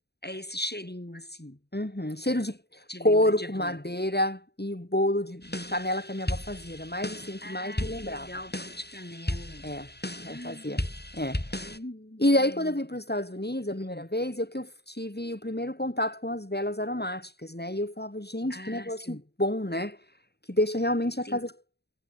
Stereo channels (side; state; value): right; late; 0.48 ms